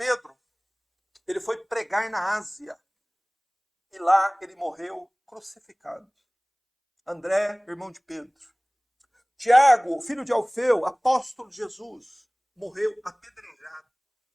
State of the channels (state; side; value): identical; both; correlation 1.00